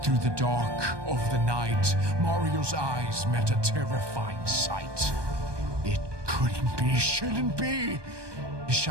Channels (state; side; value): late; left; 1.2 ms